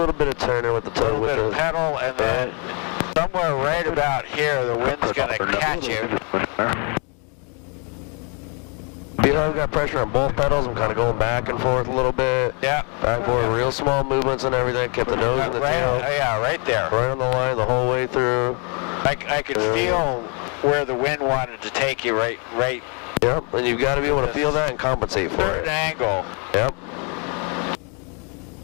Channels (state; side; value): quieter; right; 35.4 dB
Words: bit of turning with the a toe, little with bit the of pedal, and then somewhere right about here, the wind's gonna catch you. feel I've got pressure on both pedals. I'm kind of going back and forth a little bit. Yeah. Back and forth, real small movements and everything. Kept the nose and the tail. Yeah, right there. Right on the line the whole way through. I could feel where the wind wanted to take you right. Yep, and you've got to be able to feel that and compensate for Certain it. angle. Yep.